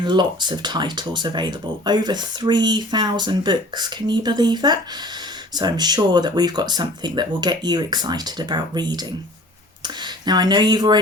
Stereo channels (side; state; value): both; normal; correlation 0.46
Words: lots of titles available. Over 3,000 books. Can you believe that? So I'm sure that we've got something that will get you excited about reading. Now I know you've